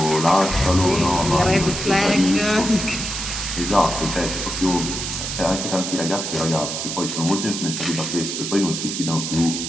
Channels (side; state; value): right; noise; hiss, 4 dB below the sound